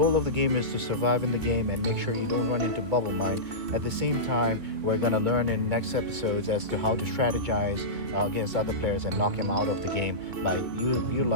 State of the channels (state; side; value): late; left; 2.7 ms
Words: of the game is to survive in the game and make sure you don't run into bubble mine. At the same time, we're going to learn in next episodes as to how to strategize against other players and knock them out of the game by utilizing